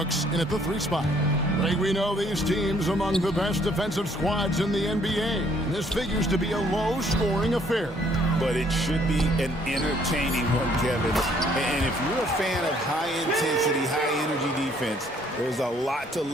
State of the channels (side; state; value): both; normal; correlation 0.64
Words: in at the 3 spot. Like we know these teams among the best defensive squads in the NBA. This figures to be a low-scoring affair. But it should be an entertaining one, Kevin. And if you're a fan of high-intensity, high-energy defense, there's a lot to